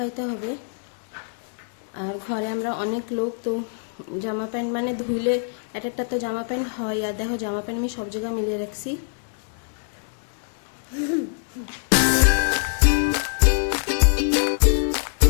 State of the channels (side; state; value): right; silent; 62 dB below the other